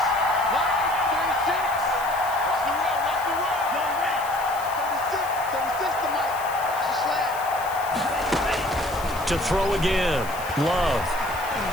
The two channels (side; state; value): left; noise; hiss, 15 dB below the sound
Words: To throw again, Love.